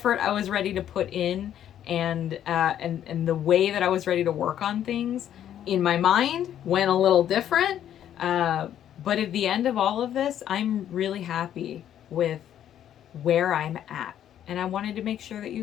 I was ready to put in, and the way that I was ready to work on things in my mind went a little different. But at the end of all of this, I'm really happy with where I'm at, and I wanted to make sure that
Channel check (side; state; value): right; quieter; 10.6 dB